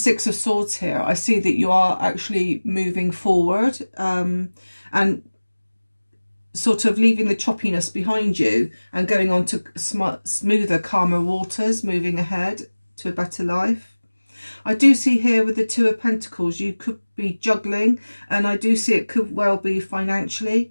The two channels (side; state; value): both; inverted; correlation -1.00